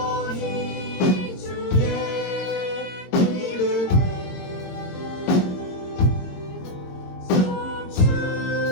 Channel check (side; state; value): right; late; 22 ms